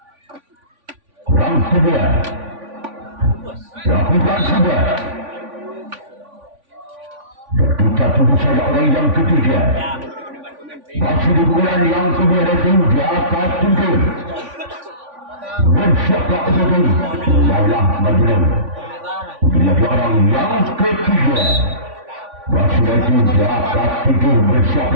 Orang kedua. Lakukan sudah. Dan kita tunggu saja orang yang ketiga. Masih di bulan yang kedua dari tim Jaka Tinggi. Bersiaplah untuk tim Lala Majnun. Bila orang yang ketiga. Masih dari tim Jaka Tinggi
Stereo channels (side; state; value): left; late; 3.5 ms